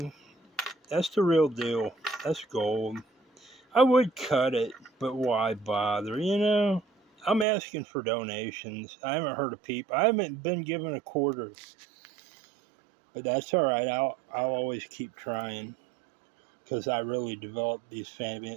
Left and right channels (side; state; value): left; drops out; at 7.5 s